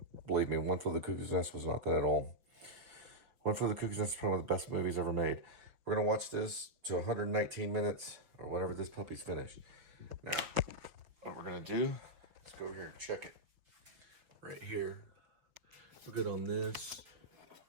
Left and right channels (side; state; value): left; late; 5.4 ms